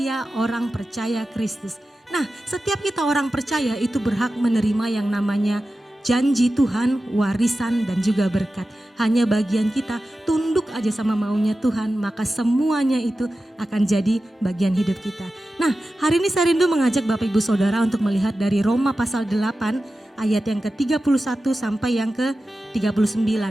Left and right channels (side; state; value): both; normal; correlation 0.93